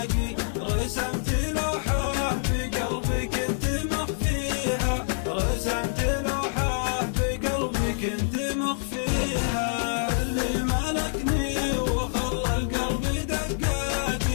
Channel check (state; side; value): silent; right; 61 dB below the other